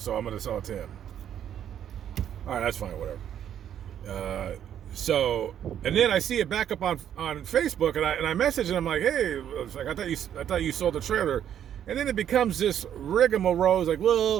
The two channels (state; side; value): quieter; left; 9.9 dB